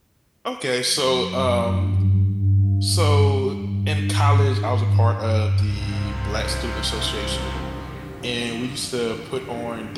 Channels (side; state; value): both; identical; correlation 1.00